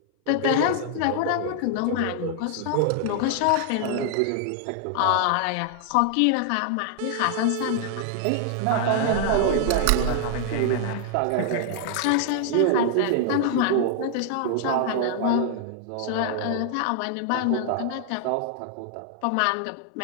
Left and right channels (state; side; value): different; both; correlation 0.00